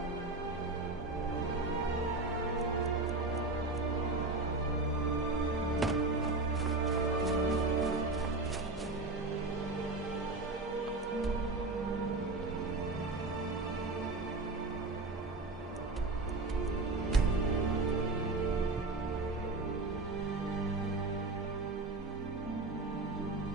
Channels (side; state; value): left; quieter; 3.2 dB